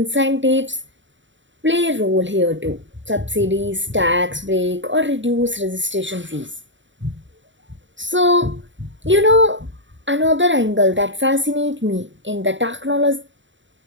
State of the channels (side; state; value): left; late; 0.55 ms